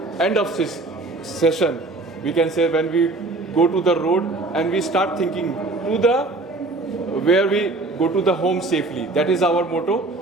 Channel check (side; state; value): left; quieter; 3.1 dB